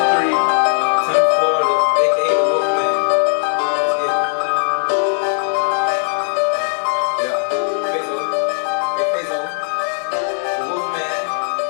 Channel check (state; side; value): silent; right; digital silence